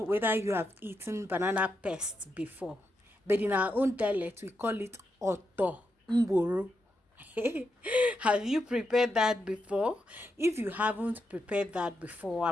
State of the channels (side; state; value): both; normal; correlation 0.84